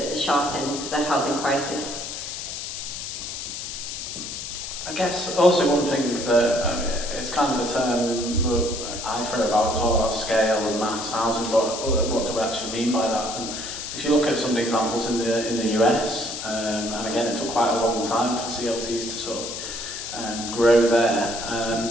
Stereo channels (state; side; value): noise; left; hiss, 7 dB below the sound